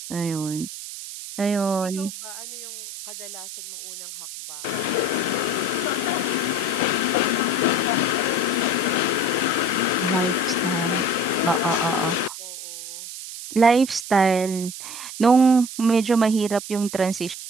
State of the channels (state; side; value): noise; right; hiss, 10 dB below the sound